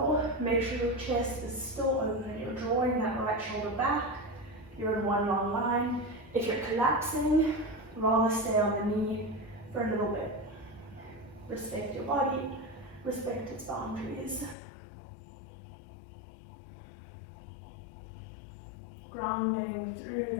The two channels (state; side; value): drops out; right; at 14.6 s